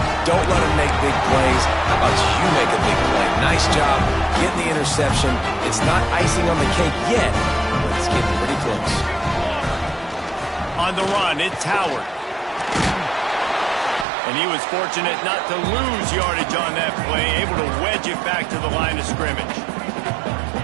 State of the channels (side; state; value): left; drops out; at 14.1 s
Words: Don't let them make big plays. How about you make a big play? Nice job getting the interception. It's not icing on the cake yet, but it's getting pretty close. On the run, it's Howard. And he was fortunate not to lose yardage on that play, able to wedge it back to the line of scrimmage.